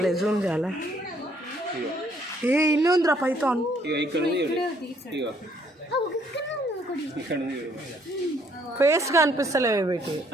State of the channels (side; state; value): both; normal; correlation 0.66